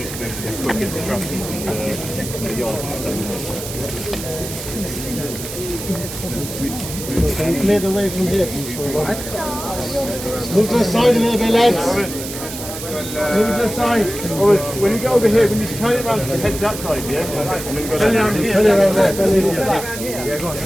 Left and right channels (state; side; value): noise; right; hiss, 9 dB below the sound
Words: left. Let's go get the traffic from the yard. Clear the way from here. Move to the side a little bit, lads. Move to the side. When you get over here, when you turn it around, head that side, yeah? And then go Turn it around here. Turn it around there. Turn it around there. Yeah, go on.